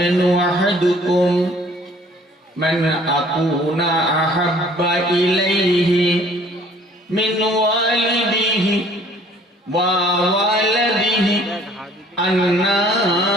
أحدكم من أكون أحب إليه من والده ووالده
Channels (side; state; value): both; normal; correlation 0.55